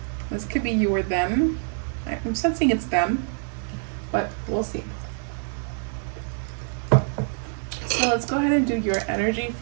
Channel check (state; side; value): silent; left; 56 dB below the other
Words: This could be you or them. I'm sensing it's them, but we'll see. So let's go ahead and do your energy